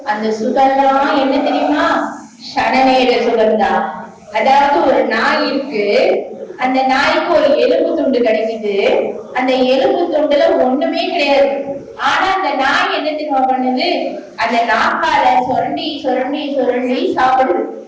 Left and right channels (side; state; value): both; identical; correlation 1.00